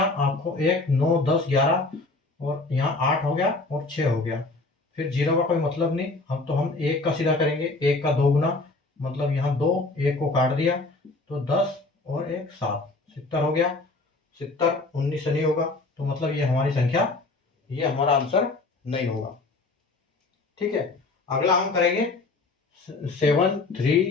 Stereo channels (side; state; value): right; quieter; 3.3 dB